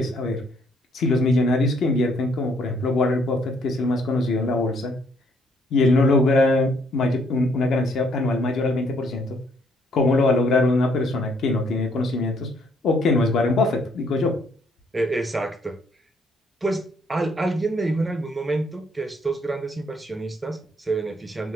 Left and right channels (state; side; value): normal; both; correlation 0.68